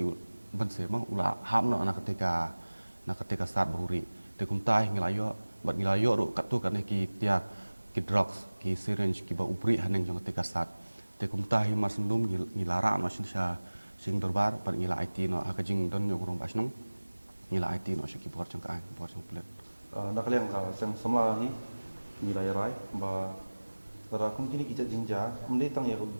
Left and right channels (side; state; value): both; inverted; correlation -1.00